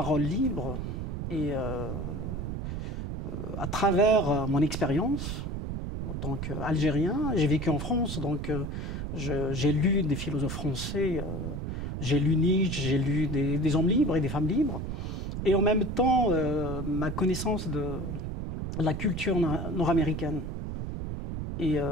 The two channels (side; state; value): right; noise; rumble, 4 dB below the sound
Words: libre, et à travers mon expérience, en tant qu'Algérien, j'ai vécu en France, donc j'ai lu des philosophes français, j'ai lu Nietzsche, j'ai lu des hommes libres et des femmes libres. Et en même temps, ma connaissance de la culture nord-américaine. Et